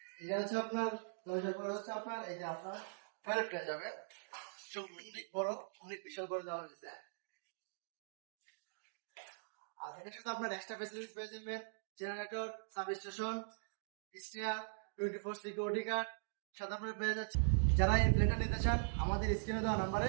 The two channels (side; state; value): left; silent; digital silence